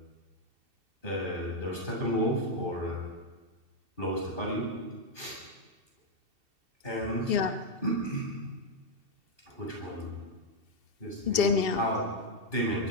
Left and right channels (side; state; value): left; late; 2.7 ms